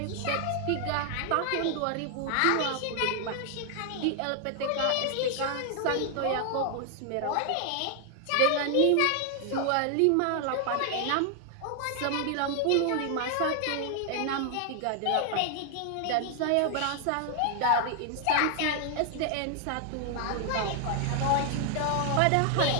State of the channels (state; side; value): different; both; correlation 0.00